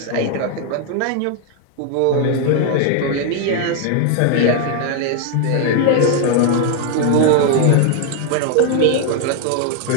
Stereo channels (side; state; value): both; different; correlation 0.00